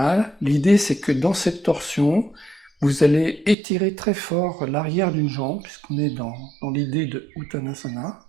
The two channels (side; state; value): left; drops out; at 3.6 s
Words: L'idée, c'est que dans cette torsion, vous allez étirer très fort l'arrière d'une jambe, puisqu'on est dans l'idée de Uttanasana,